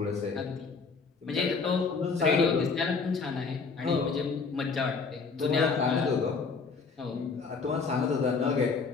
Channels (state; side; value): quieter; right; 4.8 dB